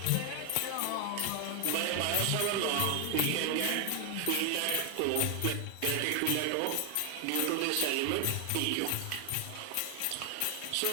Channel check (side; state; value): both; different; correlation 0.00